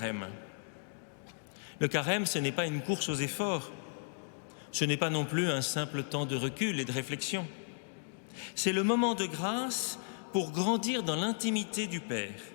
Le carême, ce n'est pas une course aux efforts, ce n'est pas non plus un simple temps de recul et de réflexion. C'est le moment de grâce pour grandir dans l'intimité du Père,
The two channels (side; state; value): right; silent; digital silence